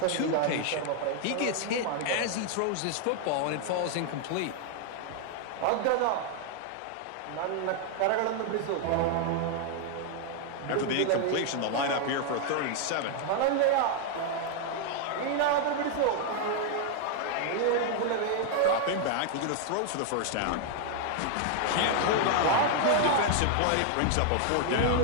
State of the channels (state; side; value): different; both; correlation 0.00